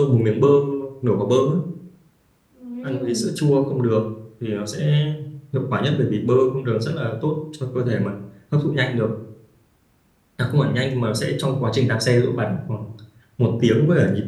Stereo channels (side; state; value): both; identical; correlation 1.00